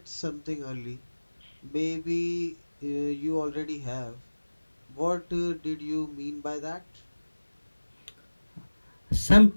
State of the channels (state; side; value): inverted; both; correlation -1.00